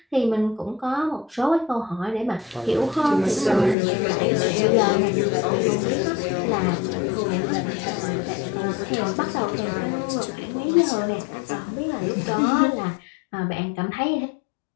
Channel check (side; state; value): right; drops out; at 3.8 s